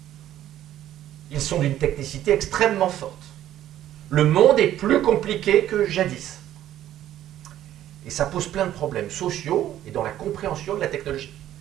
Ils sont d'une technicité extrêmement forte. Le monde est plus compliqué que jadis. Et ça pose plein de problèmes sociaux et dans la compréhension de la technologie.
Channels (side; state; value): left; quieter; 12.3 dB